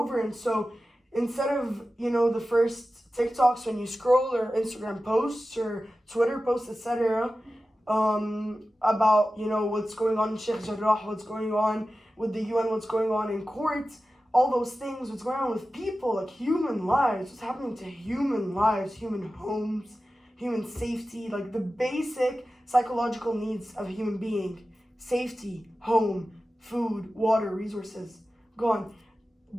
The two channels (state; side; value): normal; both; correlation 0.94